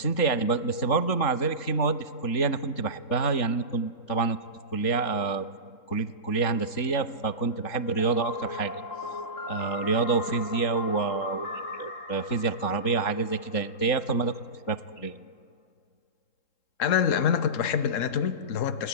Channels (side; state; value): right; late; 3.7 ms